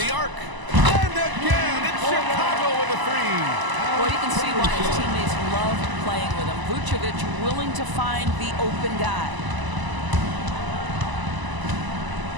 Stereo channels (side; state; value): left; late; 1.0 ms